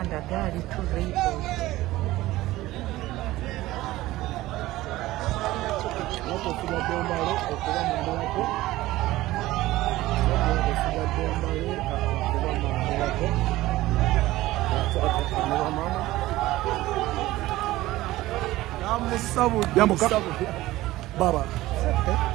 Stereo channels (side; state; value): left; quieter; 17.1 dB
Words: gari tu vehicles. Watu wasigaddeo mbale okuba mu mbalako. Wasigaddeo mbale okuba mu mbalako. Namusabudde. Yambuka. Baba.